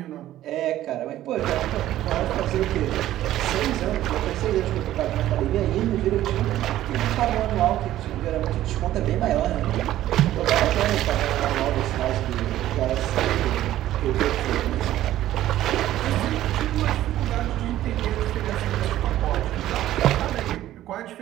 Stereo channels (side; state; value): left; quieter; 13.7 dB